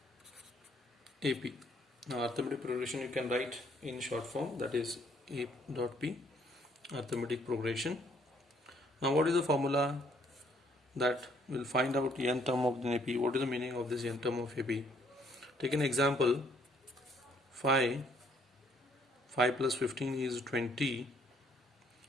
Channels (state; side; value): normal; both; correlation 0.65